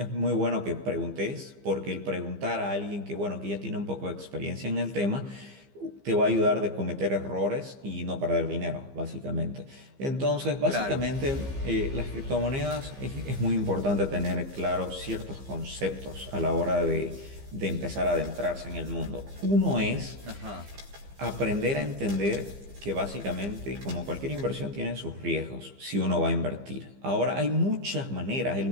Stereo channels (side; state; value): left; late; 15 ms